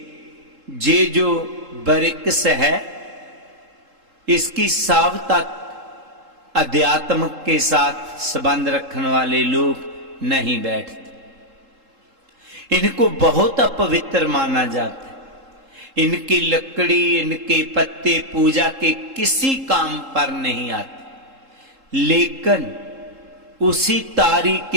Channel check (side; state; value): left; late; 3.7 ms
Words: ये जो बरिक्स है, इसकी साव तक अध्यात्म के साथ संबंध रखने वाले लोग नहीं बैठते। इनको बहुत अपवित्र माना जाता है। इनकी लकड़ी, इनके पत्ते पूजा के किसी काम पर नहीं आते। लेकिन उसी तारी